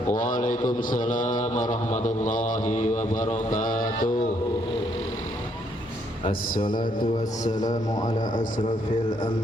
Waalaikumsalam warahmatullahi wabarakatuh. Assalatu wassalamu ala asrafil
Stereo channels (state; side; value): normal; both; correlation 0.71